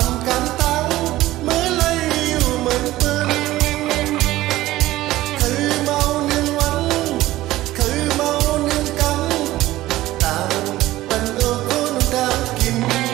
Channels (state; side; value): quieter; left; 16.2 dB